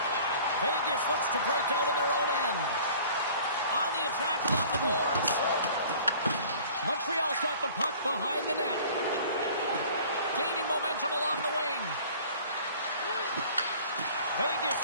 Vegas looks to break out in their own end. On the attack along the boards. Montreal's got the puck behind the net. Gaining momentum along the wing. Vegas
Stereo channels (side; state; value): both; inverted; correlation -0.48